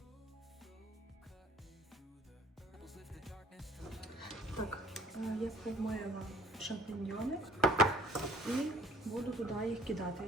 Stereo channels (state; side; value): normal; both; correlation 0.55